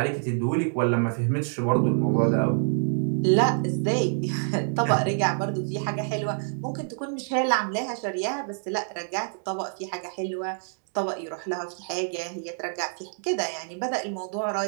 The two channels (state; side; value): silent; left; digital silence